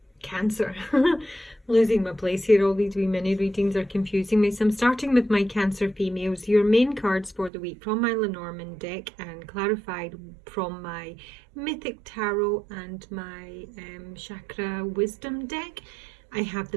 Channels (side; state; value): left; drops out; at 7.5 s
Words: Cancer. Losing my place here, all these wee mini readings are confusing me. So I'm starting with my Cancer females. Your main cards for the week from my Lenormand deck and clarified from my Mythic Tarot and my Chakra Wisdom deck. I have